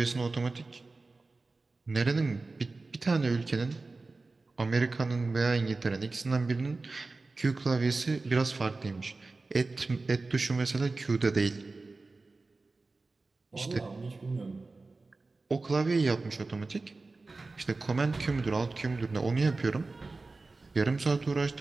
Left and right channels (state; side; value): quieter; left; 3.6 dB